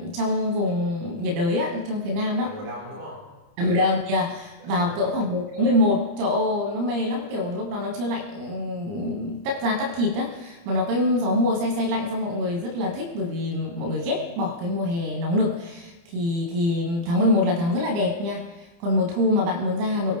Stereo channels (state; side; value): late; left; 30 ms